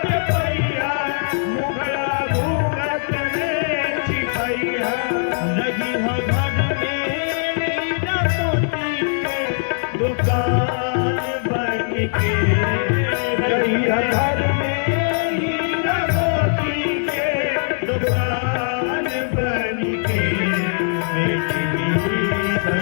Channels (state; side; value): silent; right; 65 dB below the other